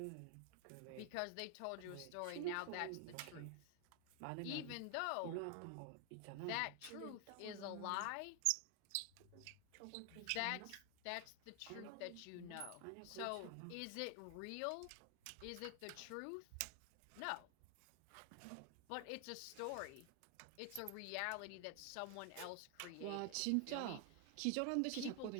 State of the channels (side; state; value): both; different; correlation 0.00